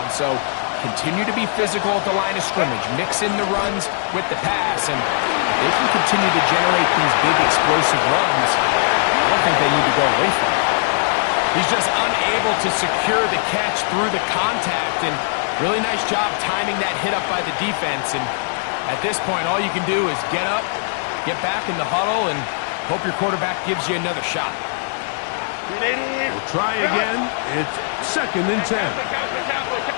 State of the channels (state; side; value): silent; right; digital silence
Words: So continue to be physical at the line of scrimmage. Mix in the runs with the pass. And if they can continue to generate these big explosive runs, I don't think they need to go away from it. He's just unable to secure the catch through the contact. And really nice job timing that hit up by the defense. And at this point, all you can do is get up, get back in the huddle, and hope your quarterback gives you another shot. We'll try again. It's 2nd and 10.